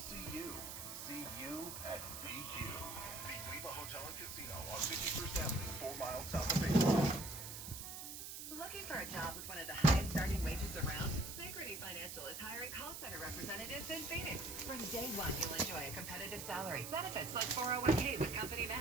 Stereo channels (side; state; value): right; noise; hiss, 8 dB below the sound